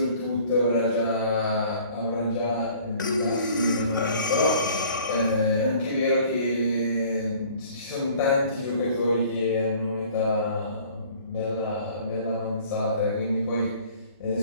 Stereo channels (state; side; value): inverted; both; correlation -0.52